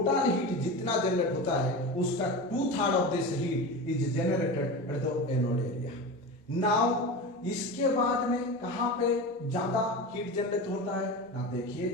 heat जितना जनरेट होता है, उसका 2/3 of this heat is generated at the anode area. Now इसके बाद में कहां पे ज्यादा हीट जनरेट होता है ना,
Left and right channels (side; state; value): both; normal; correlation 0.27